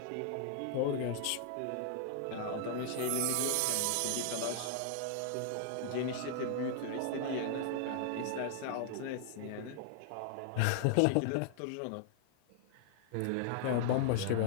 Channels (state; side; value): different; both; correlation -0.01